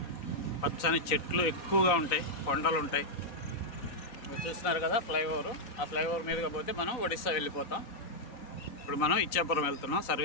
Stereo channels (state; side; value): late; right; 3.9 ms